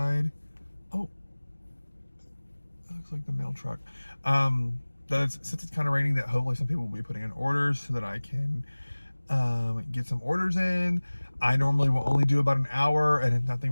oh, that looks like the mail truck. Since it's kind of raining, that hopefully some people will be putting in orders so that I can get some orders in. I normally will only do about an hour, and if nothing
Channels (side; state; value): both; inverted; correlation -1.00